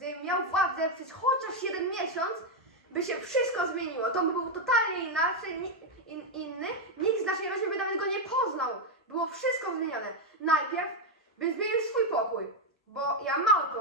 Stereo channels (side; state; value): both; normal; correlation 0.04